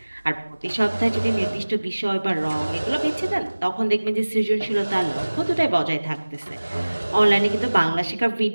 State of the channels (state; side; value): inverted; both; correlation -1.00